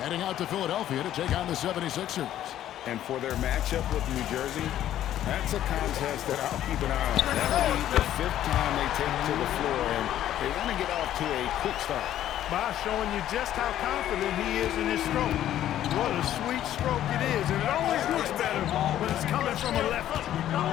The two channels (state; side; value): quieter; right; 12.0 dB